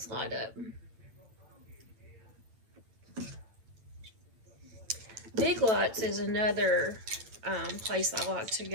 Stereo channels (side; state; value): left; late; 9.1 ms